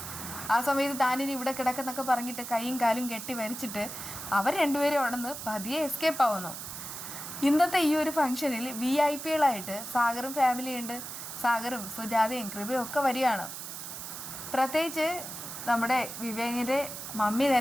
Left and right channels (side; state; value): right; noise; hiss, 9 dB below the sound